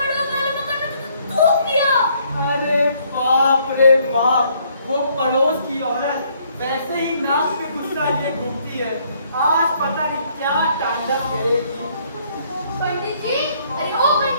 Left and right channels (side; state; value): both; inverted; correlation -0.66